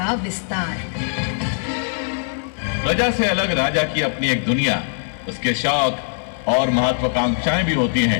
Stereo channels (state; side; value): silent; right; digital silence